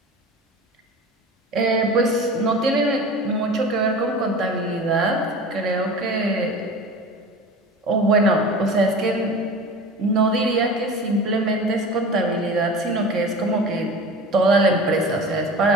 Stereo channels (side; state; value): both; normal; correlation 0.35